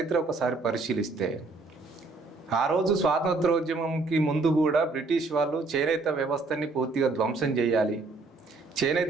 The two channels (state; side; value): quieter; left; 3.7 dB